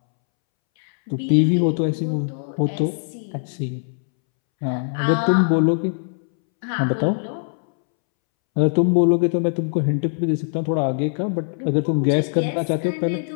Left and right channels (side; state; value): right; silent; 65 dB below the other